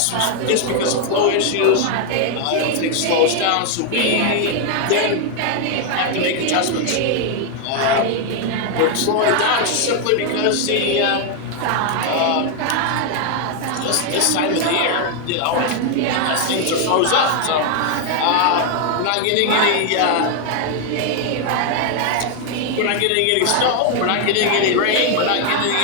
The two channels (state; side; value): different; both; correlation 0.01